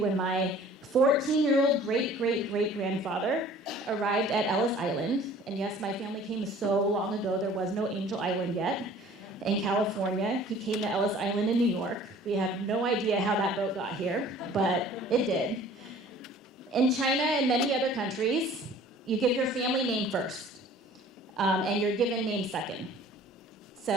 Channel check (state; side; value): normal; both; correlation 0.50